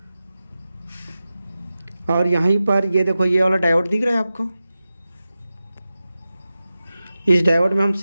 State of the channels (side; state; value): both; inverted; correlation -0.94